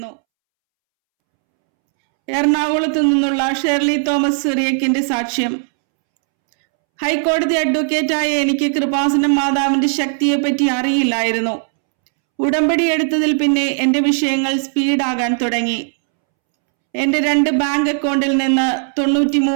എറണാകുളത്ത് നിന്നുള്ള ഷെർലി തോമസ് സിറിയക്കിന്റെ സാക്ഷ്യം. ഹൈക്കോടതി അഡ്വക്കേറ്റായ എനിക്ക് കൃപാസനം മാതാവിന്റെ ശക്തിയെപ്പറ്റി അറിയില്ലായിരുന്നു. ഉടമ്പടി എടുത്തതിൽ പിന്നെ എന്റെ വിഷയങ്ങൾ സ്പീഡാകാൻ തുടങ്ങി. എന്റെ 2 ബാങ്ക് അക്കൗണ്ടിൽ നിന്ന്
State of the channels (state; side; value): silent; left; 68 dB below the other